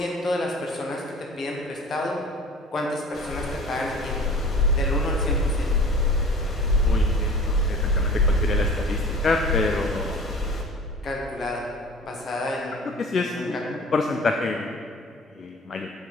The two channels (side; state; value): both; normal; correlation 0.43